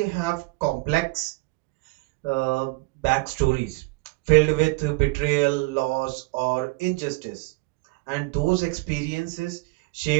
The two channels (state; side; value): quieter; left; 25.2 dB